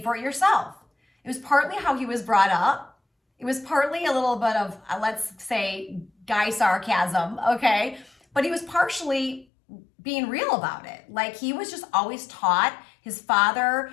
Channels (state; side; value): drops out; right; at 9.5 s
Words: it yourself. It was partly how he was brought up. It was partly a little bit of, let's say, guy sarcasm, okay? But he was partially being real about it. Like, he was just always taught. His father